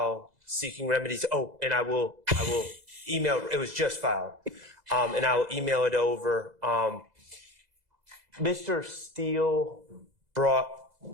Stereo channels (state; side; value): late; left; 2.0 ms